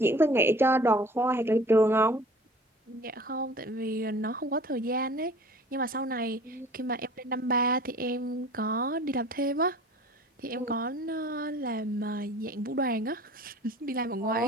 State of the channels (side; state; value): both; normal; correlation 0.46